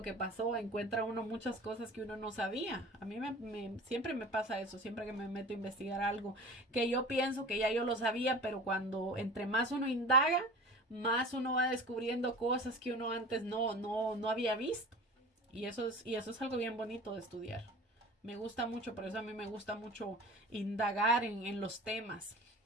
que pasó, encuentra uno muchas cosas que uno no sabía. A mí siempre me pasa eso, siempre que me meto a investigar algo que yo pienso que ya yo lo sabía, pero cuando entre más uno indaga, más uno va descubriendo cosas que uno antes no había visto. Y eso es algo bien bonito de estudiar. Me gusta mucho, por eso a mí me gusta mucho indagar en los temas.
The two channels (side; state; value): both; normal; correlation 0.38